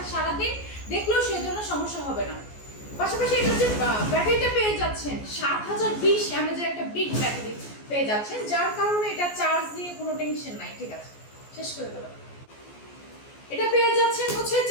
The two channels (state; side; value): late; right; 14 ms